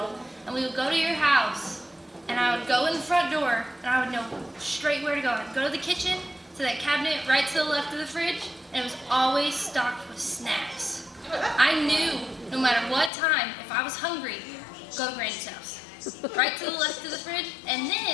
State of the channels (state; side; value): drops out; right; at 13.1 s